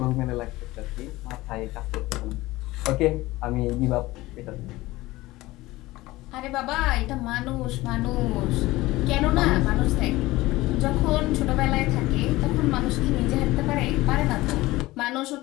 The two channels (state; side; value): quieter; right; 18.9 dB